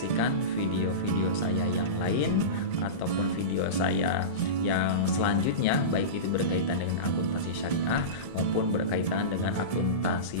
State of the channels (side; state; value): right; late; 1.7 ms